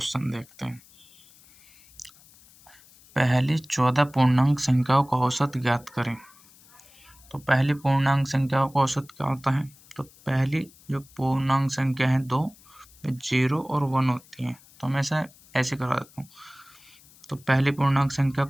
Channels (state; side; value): noise; left; hiss, 26 dB below the sound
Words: देखते हैं। पहली 14 पूर्णांक संख्याओं का औसत ज्ञात करें। तो पहली पूर्णांक संख्याओं का औसत क्या होता है? तो पहली जो पूर्णांक संख्या है 2, 0 और 1 होती है। तो मैं ऐसे करा देता हूँ। तो पहली पूर्णांक संख्या